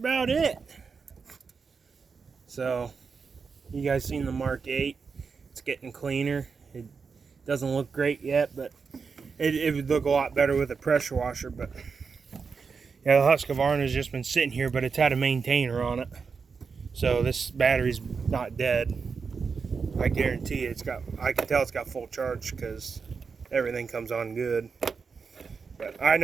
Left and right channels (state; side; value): quieter; left; 5.3 dB